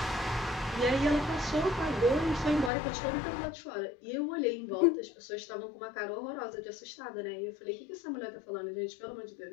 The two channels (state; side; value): drops out; right; at 2.7 s